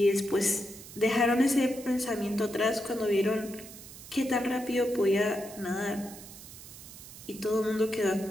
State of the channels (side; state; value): right; noise; hiss, 16 dB below the sound